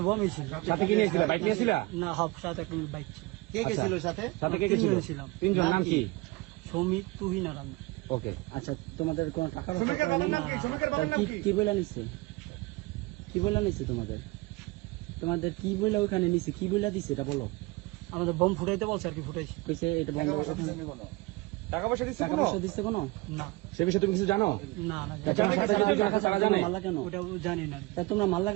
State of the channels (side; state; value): left; quieter; 22.6 dB